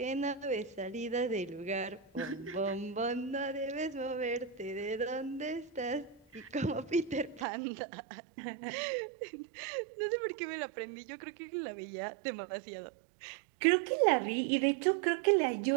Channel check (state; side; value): drops out; left; at 7.5 s